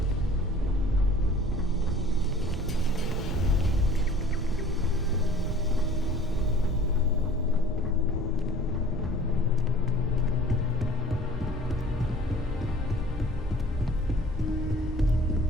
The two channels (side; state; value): both; normal; correlation 0.49